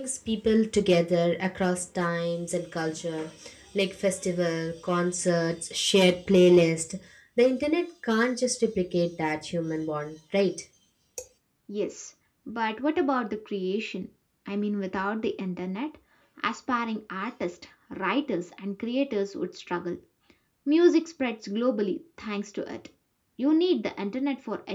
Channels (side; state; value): both; identical; correlation 1.00